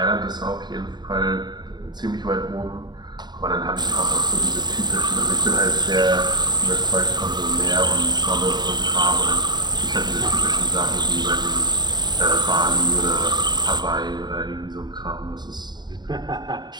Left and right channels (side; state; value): left; late; 0.21 ms